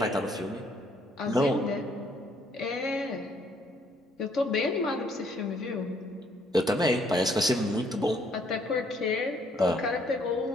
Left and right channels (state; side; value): normal; both; correlation 0.66